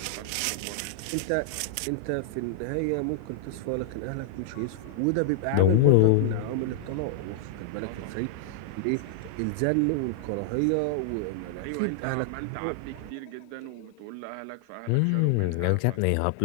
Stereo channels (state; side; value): different; both; correlation -0.01